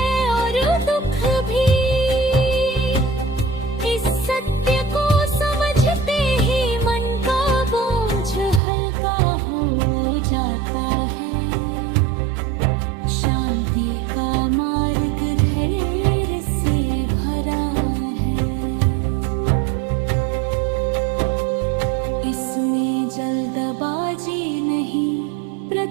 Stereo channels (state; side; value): drops out; left; at 8.6 s